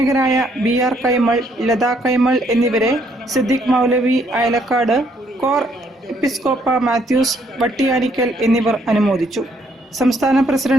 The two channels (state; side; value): normal; both; correlation 0.69